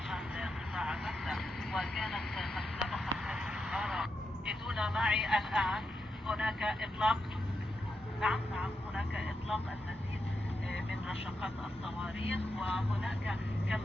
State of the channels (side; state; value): both; normal; correlation 0.86